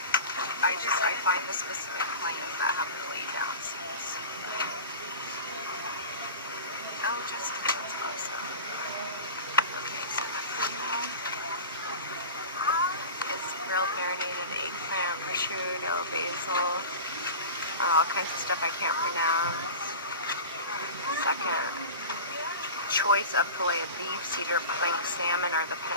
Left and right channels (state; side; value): inverted; both; correlation -0.33